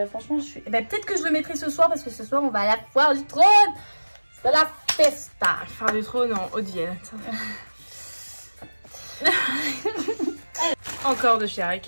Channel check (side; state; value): both; inverted; correlation -1.00